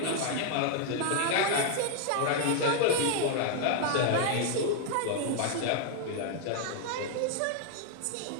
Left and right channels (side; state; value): both; different; correlation 0.00